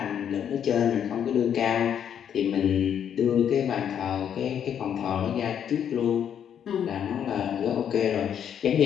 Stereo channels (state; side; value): quieter; right; 8.8 dB